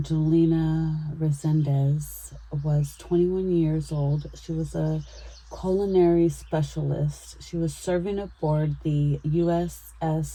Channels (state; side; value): identical; both; correlation 1.00